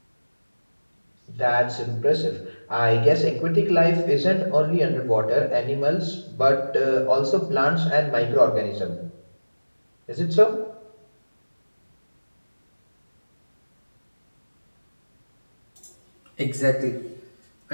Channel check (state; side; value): inverted; both; correlation -1.00